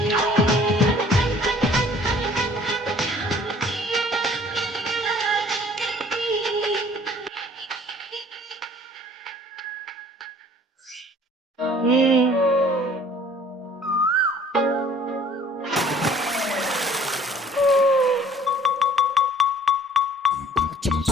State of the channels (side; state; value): both; normal; correlation 0.53